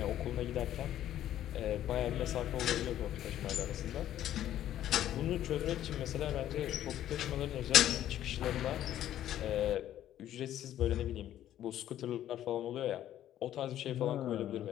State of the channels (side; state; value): right; quieter; 12.0 dB